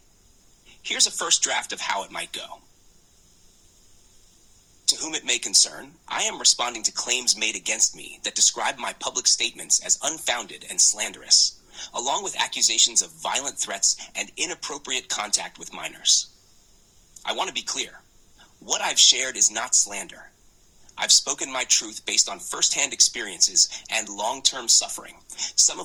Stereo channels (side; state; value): both; identical; correlation 1.00